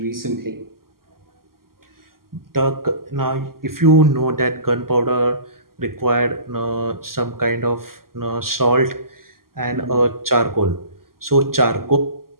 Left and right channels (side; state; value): left; late; 0.92 ms